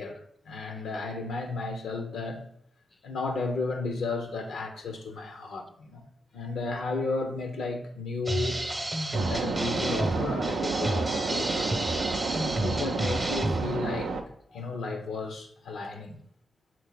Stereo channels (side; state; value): both; normal; correlation 0.79